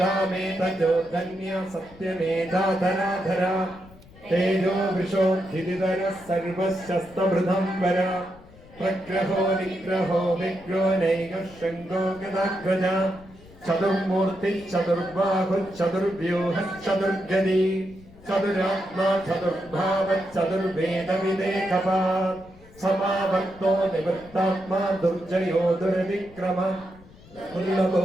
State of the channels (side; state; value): left; noise; rumble, 22 dB below the sound